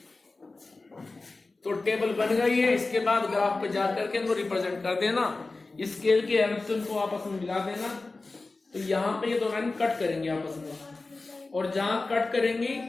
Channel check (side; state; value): right; quieter; 3.5 dB